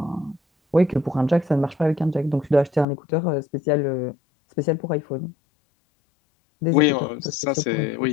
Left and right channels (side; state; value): right; drops out; at 2.9 s